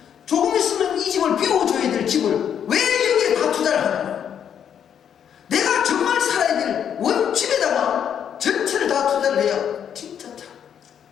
조금 있으면 이 집을 비워줘야 될 집을 왜 여기에 다 투자를 하냐고. 내가 정말 살아야 될 원집에다가 전체를 다 투자를 해야 진짜 참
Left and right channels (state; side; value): quieter; right; 8.6 dB